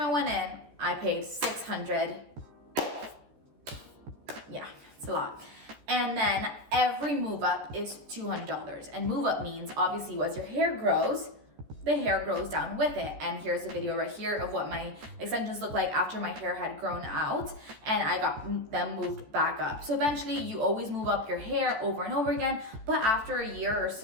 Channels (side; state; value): left; late; 14 ms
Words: went in, I paid $600. Yeah, it's a lot. And then every move up is $200. And move up means obviously as your hair grows, the hair grows down with it. And here's a video right here of what my extensions look like after my hair had grown out and I got them moved back up. So eventually you always move up your hair over and over again, but after a year or